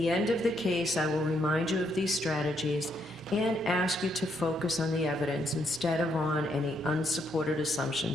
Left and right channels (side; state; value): both; normal; correlation 0.75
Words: end of the case, I will remind you of these strategies and ask you to focus on the evidence instead of on any unsupported